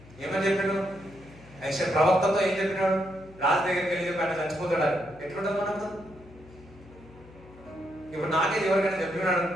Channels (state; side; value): noise; left; hum, 22 dB below the sound